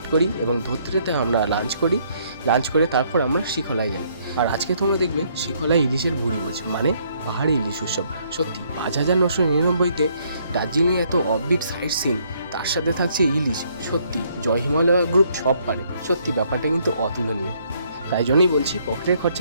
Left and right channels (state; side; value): inverted; both; correlation -0.68